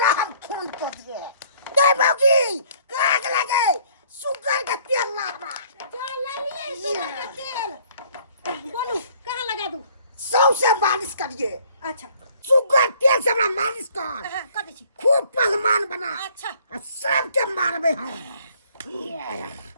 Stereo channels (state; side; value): inverted; both; correlation -0.59